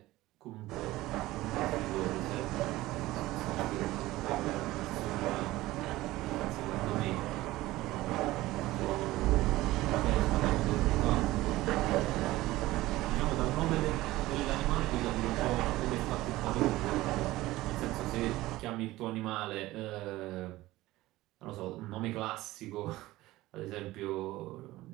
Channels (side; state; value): left; quieter; 17.6 dB